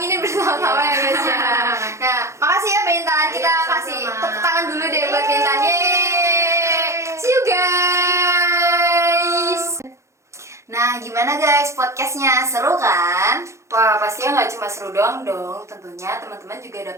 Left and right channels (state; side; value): late; left; 0.14 ms